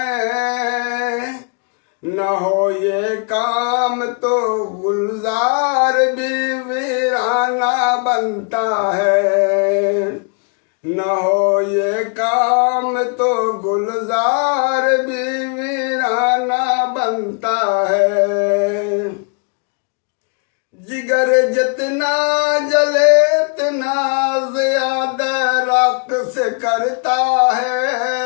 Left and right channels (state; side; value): quieter; right; 38.8 dB